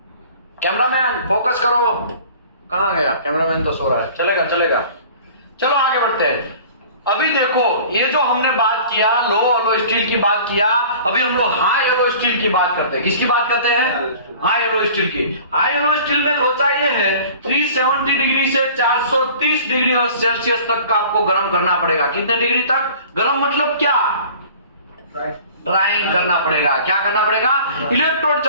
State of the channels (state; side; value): inverted; both; correlation -0.45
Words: कैमरामैन फोकस करो। कहां गया कैमरामैन? तो सो रहा है। चलेगा। चलो आगे बढ़ते हैं। अभी देखो ये जो हमने बात किया लो एलो स्टील की बात किया, अभी हम लोग हाई एलो स्टील की बात करते हैं। किसकी बात करते हैं? हाई एलो स्टील की। हाई एलो स्टील में लोचा ये है 370 डिग्री से 430 डिग्री सेल्सियस तक का आपको गर्म करना पड़ेगा। कितने डिग्री तक गर्म? मतलब क्या? ड्राइंग करना पड़ेगा। क्या करना पड़ेगा? इलेक्ट्रोड